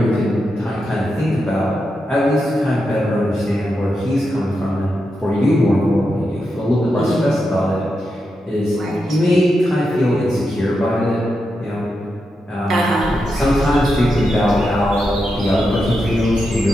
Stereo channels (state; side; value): normal; both; correlation 0.86